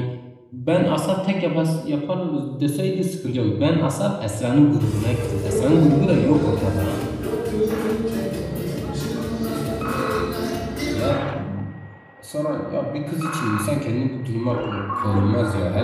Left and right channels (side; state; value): both; identical; correlation 1.00